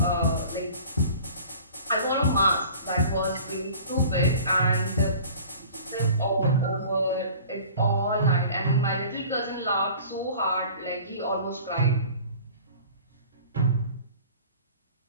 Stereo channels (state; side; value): inverted; both; correlation -0.44